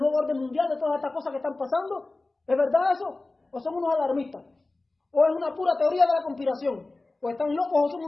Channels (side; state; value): right; quieter; 3.2 dB